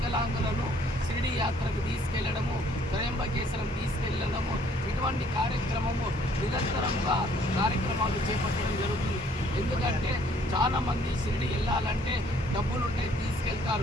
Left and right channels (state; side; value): normal; both; correlation 0.62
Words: షిరిడి యాత్రకు తీసుకెళ్లడము, త్రయంబకేశ్వరం తీసుకెళ్లడము, ఇటువంటి కార్యక్రమము నిరంతరంగా కార్యక్రమాలు చేపట్టడం జరుగుతుంది. ఎందుకంటే చాలామంది షిరిడి వెళ్ళాలంటే డబ్బులుంటే